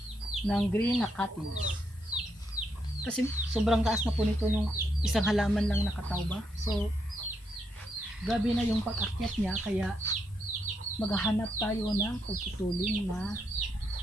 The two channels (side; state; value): both; normal; correlation 0.79